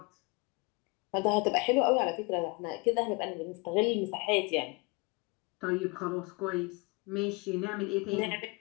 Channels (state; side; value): quieter; right; 28.6 dB